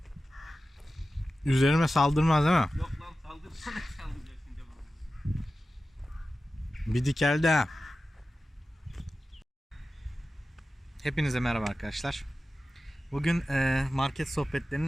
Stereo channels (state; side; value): normal; both; correlation 0.94